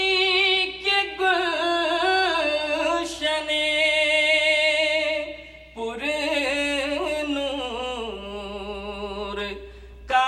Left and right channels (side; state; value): both; identical; correlation 1.00